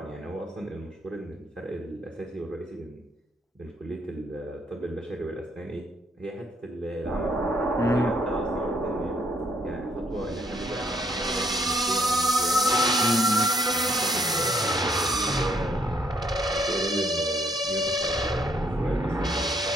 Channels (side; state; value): both; normal; correlation 0.68